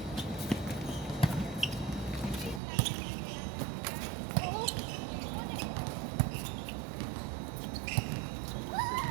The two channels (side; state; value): left; drops out; at 2.6 s